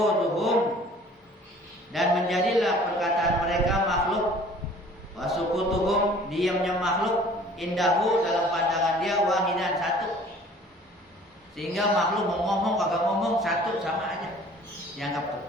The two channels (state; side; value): normal; both; correlation 0.50